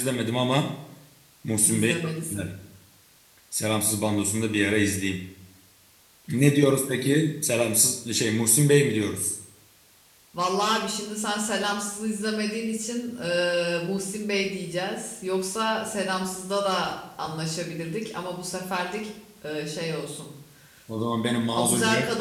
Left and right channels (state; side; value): identical; both; correlation 1.00